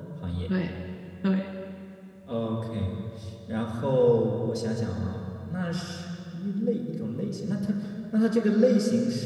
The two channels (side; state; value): both; identical; correlation 1.00